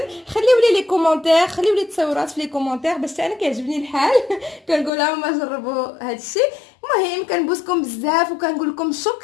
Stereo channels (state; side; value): drops out; right; at 4.9 s